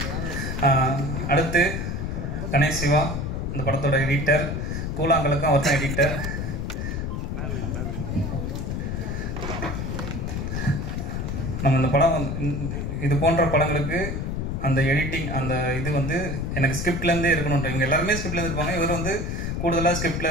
அடுத்து கணேஷ் சிவா இந்த படத்தோட எடிட்டர். கூழாங்கலுக்கும் அவர் தான் எடிட்டர். நம்ம இந்த படம் இது போன்ற படங்களுக்கு அந்த எடிட்டிங் அந்த இது வந்து எனக்கு ஸ்கிரிப்ட்லேருந்தே இருக்கணுன்ற இவங்க எல்லாருமே ஸ்கிரிப்ட்லேருந்து இருப்பாங்க. இவர் வந்து கூடுதலாக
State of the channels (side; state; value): left; noise; rumble, 3 dB below the sound